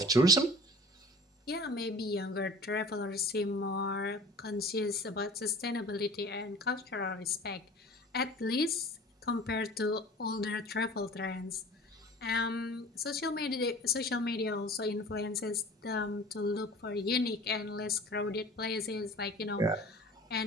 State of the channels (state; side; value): normal; both; correlation 0.42